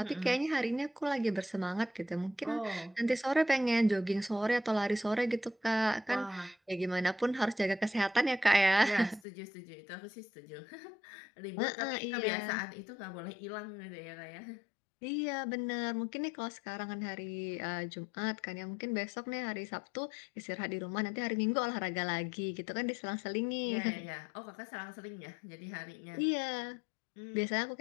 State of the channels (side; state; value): right; drops out; at 9.2 s